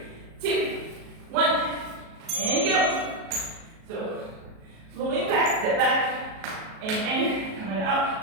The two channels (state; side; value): late; left; 37 ms